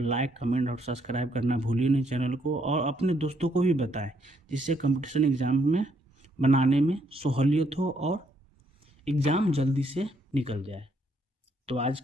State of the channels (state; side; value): normal; both; correlation 0.71